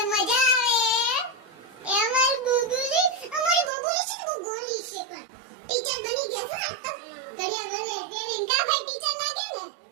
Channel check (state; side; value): drops out; left; at 3.7 s